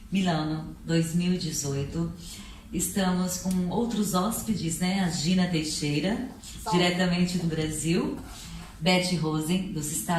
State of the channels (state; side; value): identical; both; correlation 1.00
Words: Milano 2018, estamos com outros hóspedes, né? A Gina Teixeira, diretamente do Brasil, Betty Rosen, dos